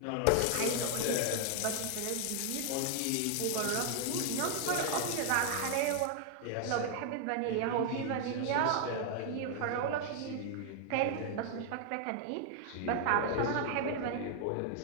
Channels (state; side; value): different; both; correlation 0.00